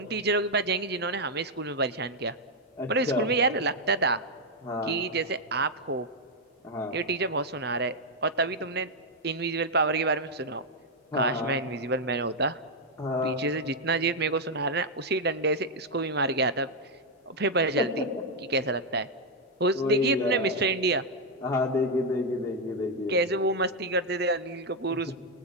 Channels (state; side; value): normal; both; correlation 0.00